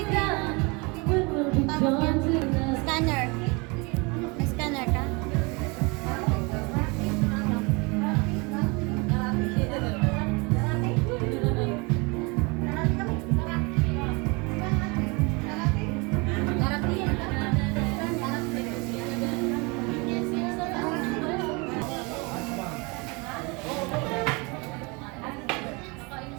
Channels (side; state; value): left; quieter; 28.4 dB